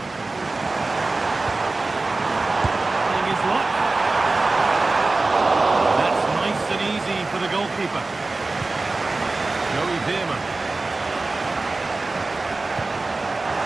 Playing his luck. That's nice and easy for the goalkeeper. Joey Veerman.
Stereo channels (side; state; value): left; quieter; 3.4 dB